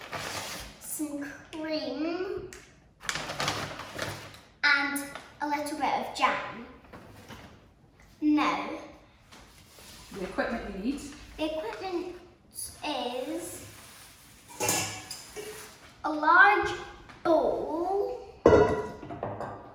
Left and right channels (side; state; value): both; identical; correlation 1.00